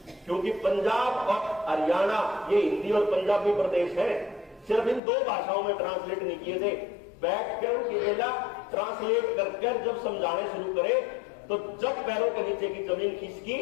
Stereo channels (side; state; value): right; drops out; at 5.0 s